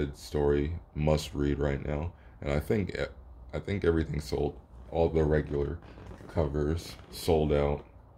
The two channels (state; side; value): identical; both; correlation 1.00